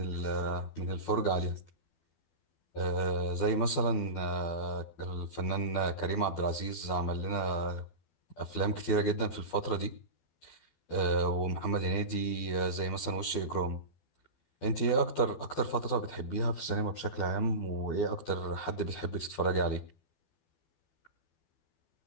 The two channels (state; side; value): late; right; 12 ms